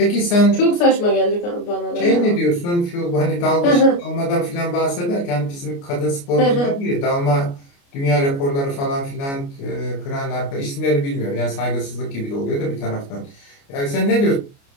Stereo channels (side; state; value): right; late; 29 ms